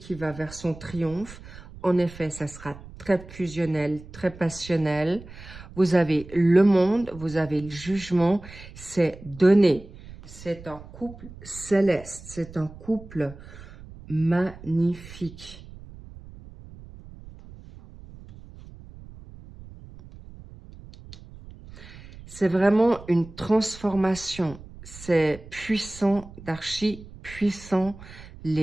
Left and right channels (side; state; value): right; noise; rumble, 17 dB below the sound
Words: va vers son triomphe. En effet, ça sera très fusionnel, très passionnel. Vous avez le monde, vous avez le jugement, c'est donné. C'est un couple céleste, c'est un couple magnifique. C'est vraiment une transformation. C'est puissant, d'archi puissant.